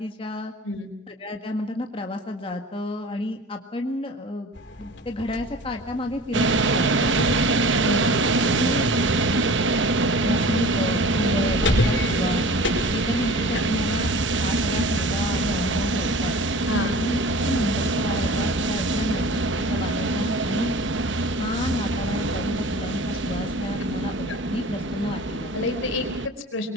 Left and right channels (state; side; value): normal; both; correlation 0.41